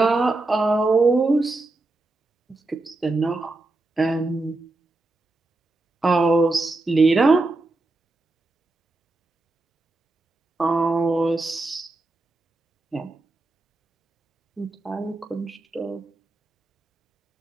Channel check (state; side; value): quieter; left; 3.0 dB